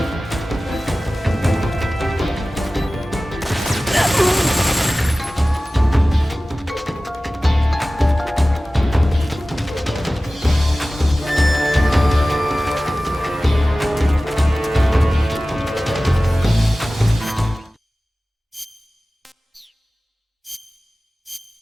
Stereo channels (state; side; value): normal; both; correlation 0.96